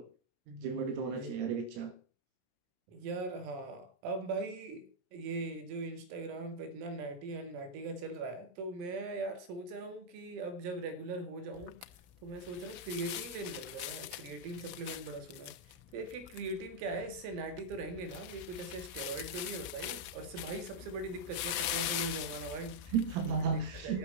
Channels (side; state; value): left; late; 16 ms